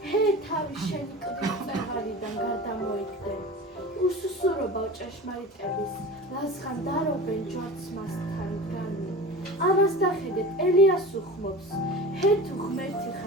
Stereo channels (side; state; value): both; normal; correlation 0.34